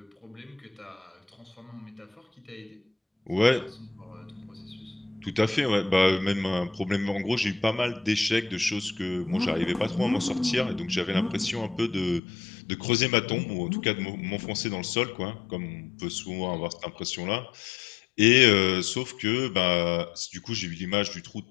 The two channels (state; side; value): drops out; right; at 12.2 s